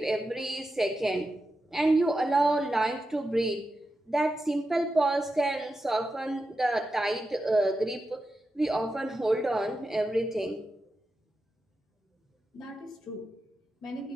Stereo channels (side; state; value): both; normal; correlation 0.90